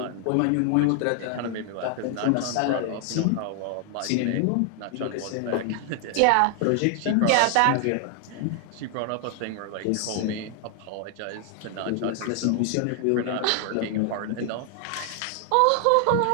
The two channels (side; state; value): both; different; correlation 0.00